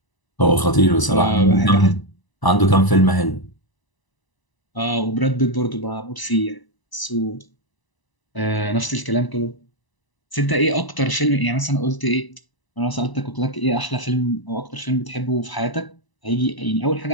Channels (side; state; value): right; late; 1.0 ms